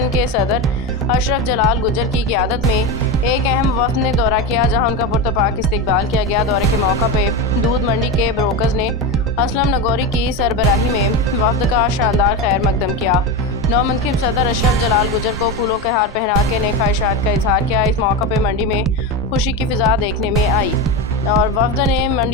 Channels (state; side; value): normal; both; correlation 0.18